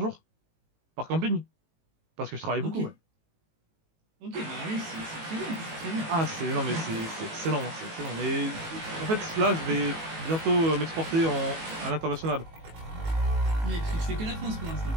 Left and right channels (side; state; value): left; late; 18 ms